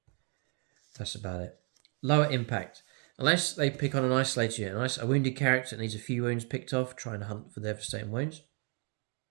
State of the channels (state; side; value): quieter; left; 37.7 dB